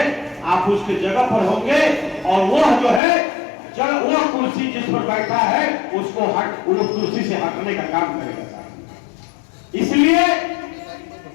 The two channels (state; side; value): drops out; right; at 3.0 s